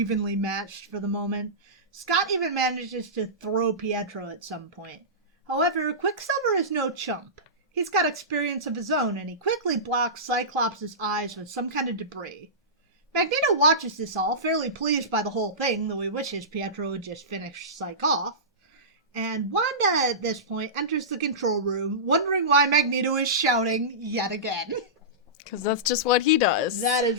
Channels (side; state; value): both; normal; correlation -0.19